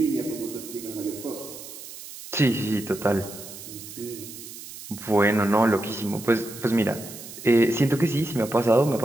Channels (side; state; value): right; noise; hiss, 13 dB below the sound